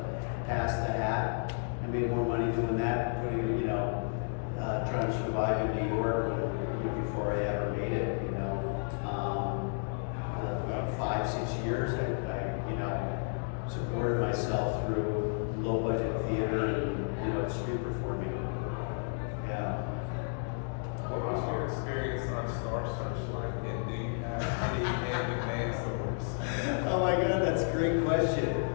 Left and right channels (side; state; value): right; silent; 56 dB below the other